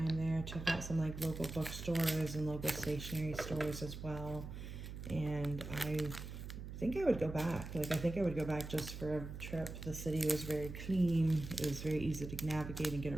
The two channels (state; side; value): noise; right; hum, 9 dB below the sound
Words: there. Checked out some like local bookstores and local stationery stores as well. And I think I would go back. Like, I think I would go back just for a trip. The city was very clean. It was very easy to navigate and get